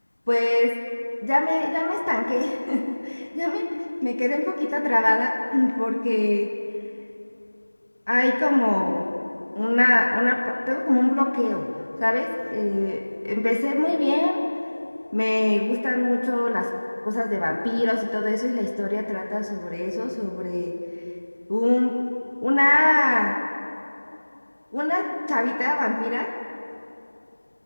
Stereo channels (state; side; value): inverted; both; correlation -1.00